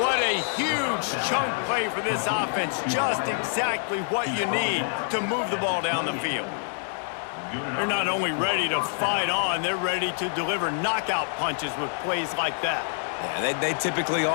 what a huge chunk play for this offense. Just exactly what you need to move the ball down the field. They're not only ready to fight on, they're ready to deliver knockout punches with plays like that. Yeah, they typically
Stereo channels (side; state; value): right; silent; 61 dB below the other